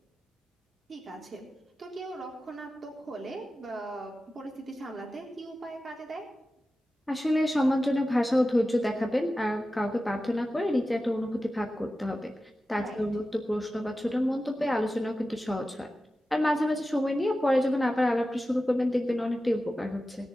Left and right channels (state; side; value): normal; both; correlation 0.94